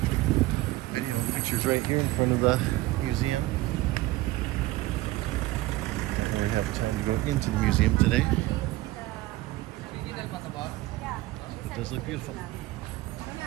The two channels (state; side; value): quieter; left; 18.1 dB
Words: video and pictures right here in front of the museum. Don't really have time to go into the museum today. It does look beautiful.